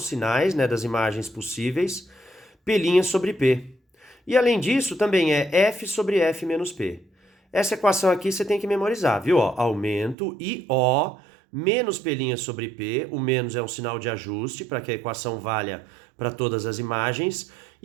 sinais, né, das imagens possíveis, P' sobre P. E além disso, também é F sobre F menos P. Essa equação aqui você tem que memorizar, viu? Ó, aumento IO menos P' sobre P, o menos é um sinal de ajuste para que a equação valha para todas as imagens,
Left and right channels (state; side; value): drops out; left; at 10.2 s